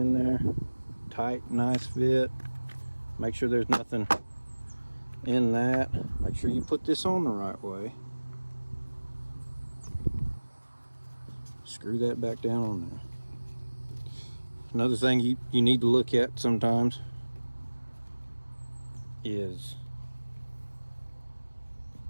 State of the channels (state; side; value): inverted; both; correlation -1.00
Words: there. Tight, nice fit. Make sure there's nothing in that. Make sure you put this on the right way. Screw that back down on there. Another thing you need to look at sometimes is